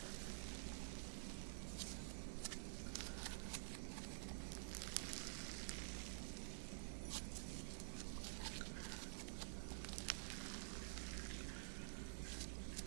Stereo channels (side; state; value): left; silent; digital silence